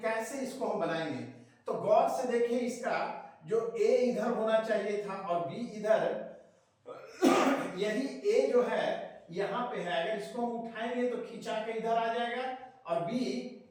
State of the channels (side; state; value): both; identical; correlation 1.00